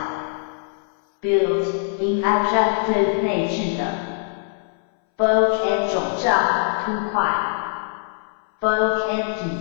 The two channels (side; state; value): right; silent; 62 dB below the other